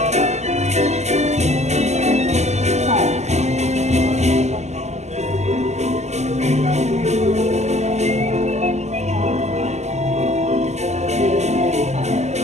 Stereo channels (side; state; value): left; late; 0.33 ms